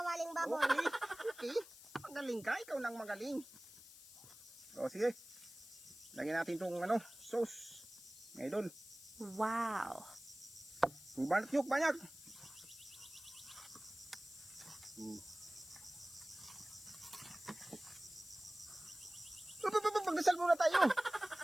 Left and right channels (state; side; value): noise; left; hiss, 17 dB below the sound